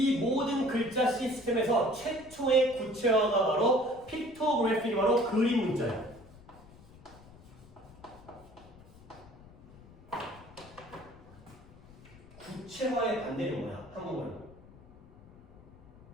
모든 글자 시스템에서 최초의 구체화가 바로 픽토그래피가 바로 그림 문자예요. 구체화의 반대는 뭐야? 한국말로.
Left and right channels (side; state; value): left; noise; rumble, 22 dB below the sound